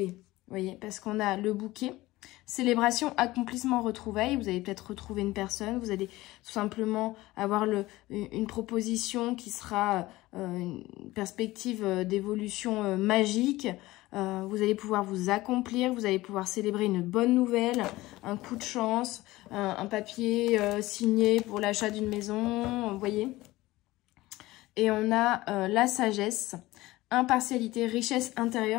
vous voyez, parce qu'on a le bouquet. Célébration, accomplissement, retrouvailles. Vous allez peut-être retrouver une personne. Vous allez tout simplement avoir une proposition qui sera une perspective d'évolution magique. Vous allez pouvoir vous accomplir. Vous allez pouvoir célébrer une bonne nouvelle, un coup de chance, un papier signé pour l'achat d'une maison. Vous voyez. Et on a la sagesse, impartialité, richesse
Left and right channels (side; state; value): right; quieter; 18.4 dB